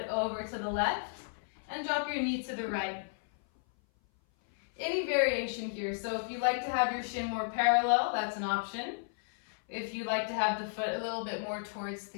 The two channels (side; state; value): right; silent; 56 dB below the other